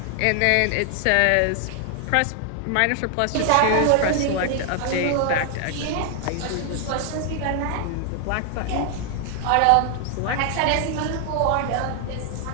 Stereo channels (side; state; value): both; different; correlation 0.00